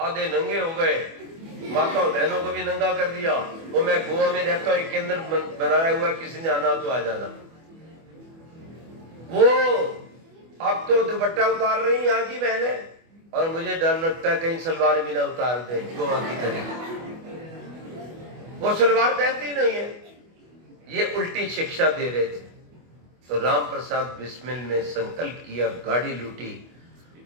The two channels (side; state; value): left; late; 24 ms